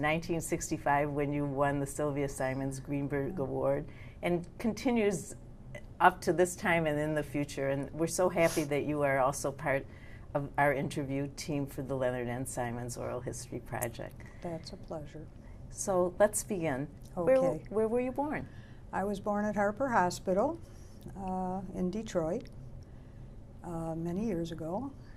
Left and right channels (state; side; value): identical; both; correlation 1.00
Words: when you won the Sylvia Simon Greenberg Award, and continues up to this time and in the future. And we're so happy that you are also part of our interview team for the Leonard N. Simon's Oral History Project. That's a pleasure. So let's begin. Okay. Where were you born? I was born at Harper Hospital in Detroit many years ago,